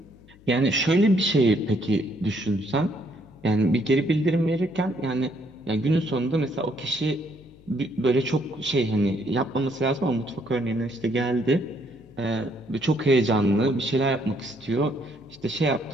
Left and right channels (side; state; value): left; noise; hum, 25 dB below the sound